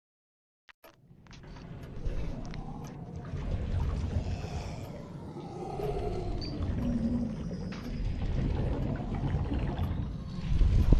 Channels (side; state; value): both; identical; correlation 1.00